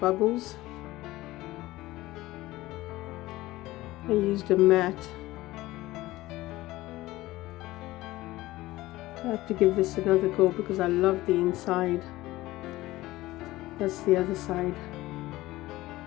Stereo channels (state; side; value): quieter; right; 17.8 dB